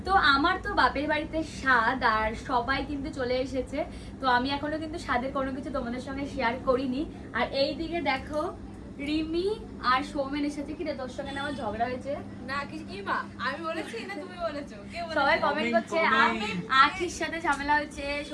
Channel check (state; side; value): identical; both; correlation 1.00